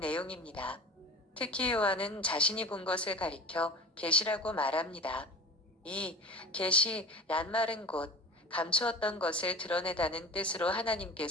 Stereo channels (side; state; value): both; normal; correlation 0.36